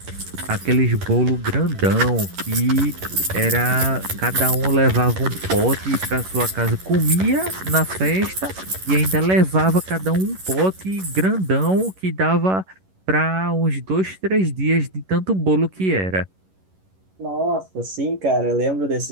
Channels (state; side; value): late; left; 11 ms